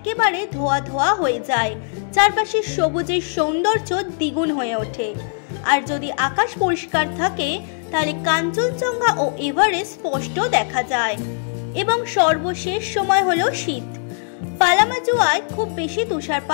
ধোয়া ধোয়া হয়ে যায়, চারপাশে সবুজের সৌন্দর্য দ্বিগুণ হয়ে ওঠে। আর যদি আকাশ পরিষ্কার থাকে তাহলে কাঞ্চনজঙ্ঘা ও এভারেস্ট স্পষ্ট দেখা যায়। এবং সর্বশেষ সময় হলো শীত। পালামাজুয়ায় খুব বেশি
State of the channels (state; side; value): silent; right; 65 dB below the other